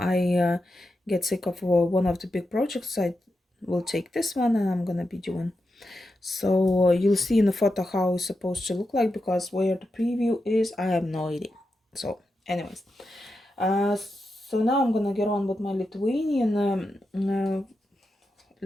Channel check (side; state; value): both; normal; correlation 0.88